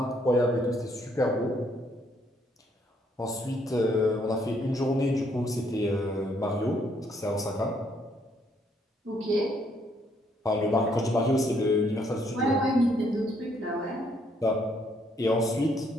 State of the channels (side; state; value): both; normal; correlation 0.69